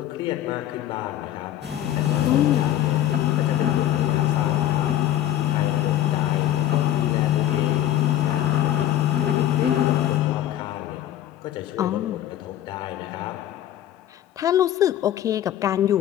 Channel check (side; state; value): right; quieter; 12.0 dB